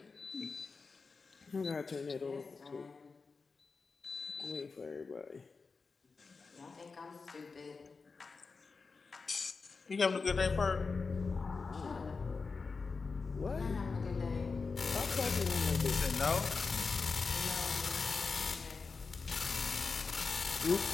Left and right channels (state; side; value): quieter; right; 4.5 dB